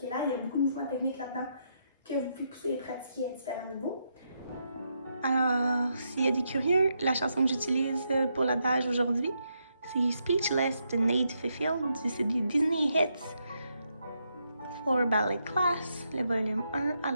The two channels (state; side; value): inverted; both; correlation -0.80